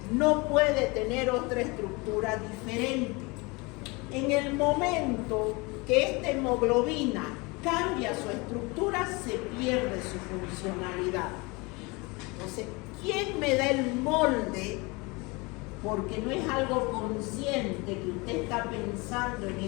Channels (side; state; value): right; quieter; 26.4 dB